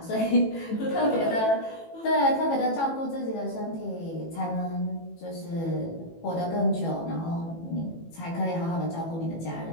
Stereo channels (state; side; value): late; right; 18 ms